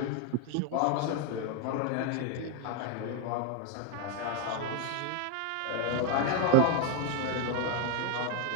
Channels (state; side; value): different; both; correlation 0.01